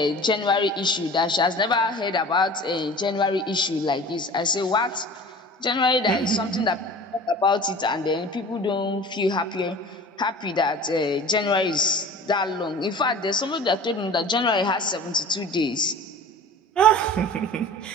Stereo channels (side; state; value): both; normal; correlation 0.41